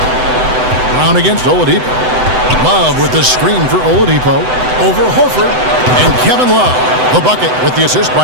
Brown against Oladipo. Love with the screen for Oladipo. Over Horford. And Kevin Love, the bucket with the assist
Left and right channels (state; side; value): late; left; 7.9 ms